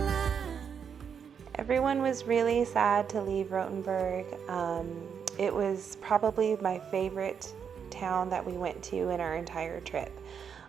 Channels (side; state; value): left; quieter; 7.2 dB